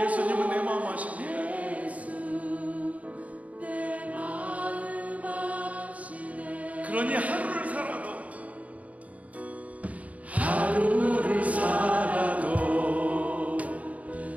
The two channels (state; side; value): late; left; 0.069 ms